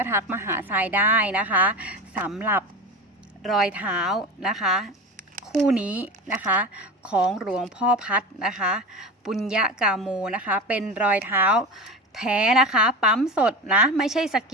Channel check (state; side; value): normal; both; correlation 0.27